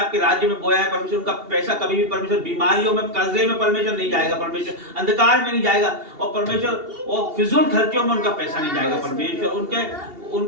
राज्य में बोया है परमेश्वर, उनका पैसा कभी भी परमेश्वर बीमारियों में, कर्जे में परमेश्वर नहीं जाएगा परमेश्वर, अंधकार में नहीं जाएगा। और परमेश्वर और फिजूल खर्चों में उनका पैसा नहीं जाएगा परमेश्वर।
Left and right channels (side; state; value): left; late; 2.8 ms